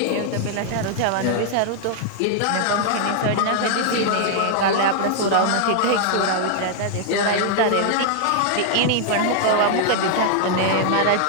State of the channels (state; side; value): different; both; correlation 0.00